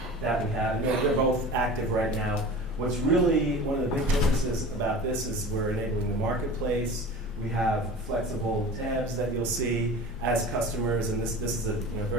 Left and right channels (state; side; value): normal; both; correlation 0.36